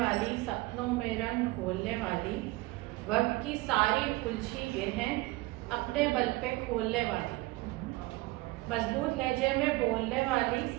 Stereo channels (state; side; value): quieter; left; 21.0 dB